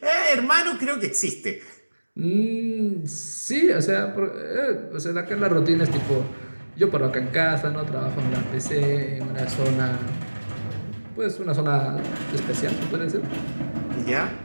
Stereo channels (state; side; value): inverted; both; correlation -1.00